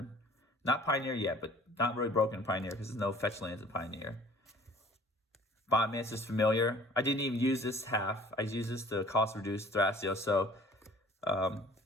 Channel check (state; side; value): normal; both; correlation 0.51